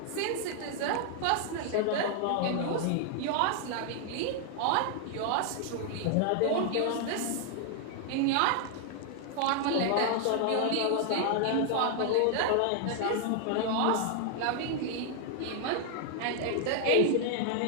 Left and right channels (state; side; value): different; both; correlation 0.00